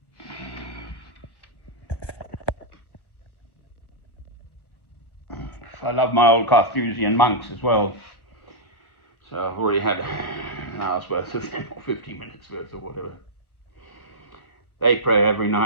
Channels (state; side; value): late; right; 1.2 ms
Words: I love my old Carthusian monks as well. So I've already had an hour's worth of them, or 50 minutes worth, or whatever. They pray every